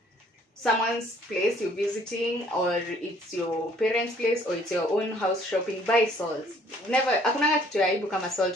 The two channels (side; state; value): both; normal; correlation 0.60